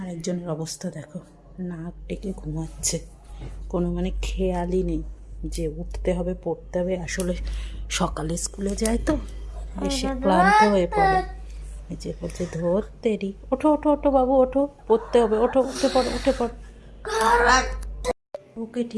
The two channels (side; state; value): both; identical; correlation 1.00